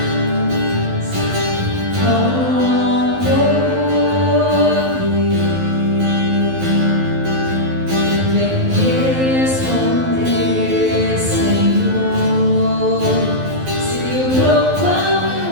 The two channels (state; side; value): late; left; 12 ms